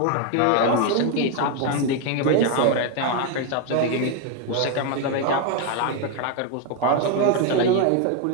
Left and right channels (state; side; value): different; both; correlation 0.01